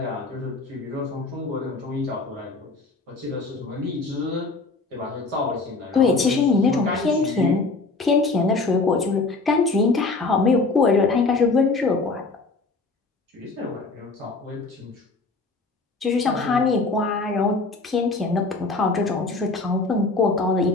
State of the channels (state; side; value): quieter; right; 3.7 dB